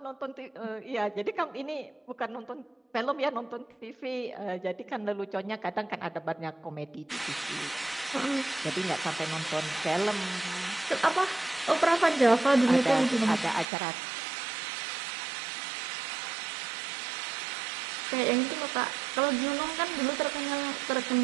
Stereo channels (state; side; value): drops out; left; at 13.7 s